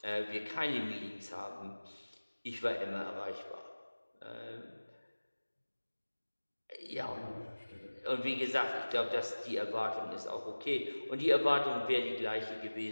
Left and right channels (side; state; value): both; inverted; correlation -1.00